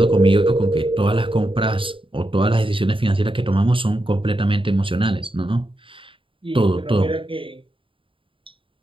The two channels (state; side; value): late; left; 0.25 ms